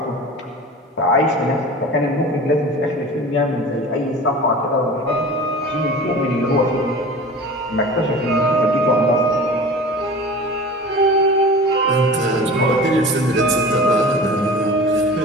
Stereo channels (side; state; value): both; normal; correlation 0.37